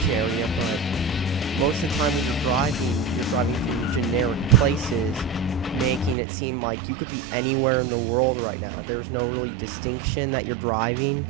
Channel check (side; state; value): left; drops out; at 6.2 s